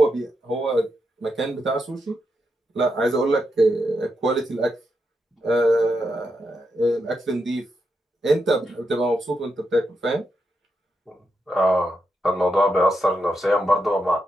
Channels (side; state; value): both; normal; correlation 0.84